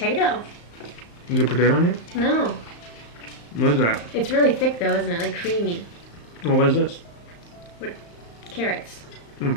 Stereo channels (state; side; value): late; right; 35 ms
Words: Is there potato in here? No. What is that? It's really thick though, isn't it? Like creamy. Oh, what is this? Carrots.